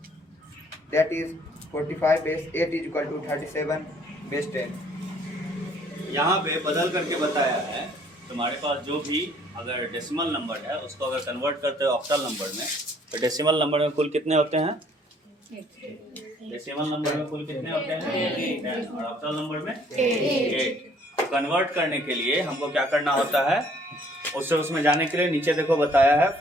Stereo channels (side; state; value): both; normal; correlation 0.60